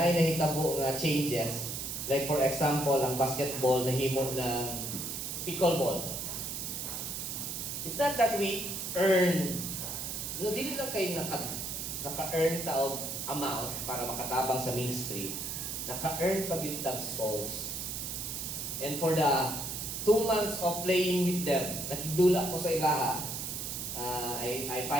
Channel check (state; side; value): noise; right; hiss, 4 dB below the sound